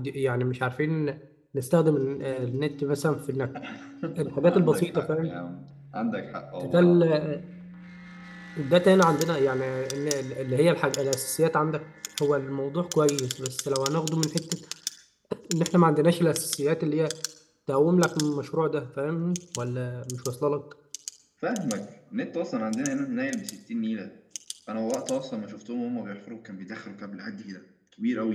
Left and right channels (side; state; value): both; identical; correlation 1.00